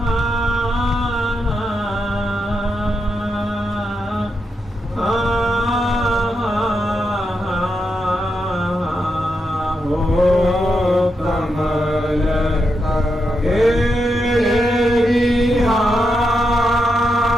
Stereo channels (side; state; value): both; normal; correlation 0.84